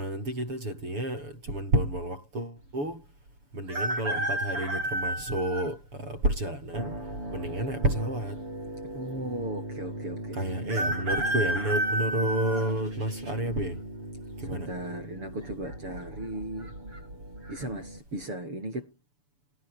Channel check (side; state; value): left; late; 7.0 ms